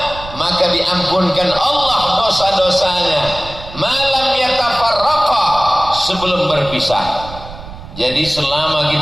maka diampunkan Allah dosa-dosanya, malam yatafarraqa, sebelum berpisah. Jadi selama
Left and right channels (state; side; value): noise; right; rumble, 14 dB below the sound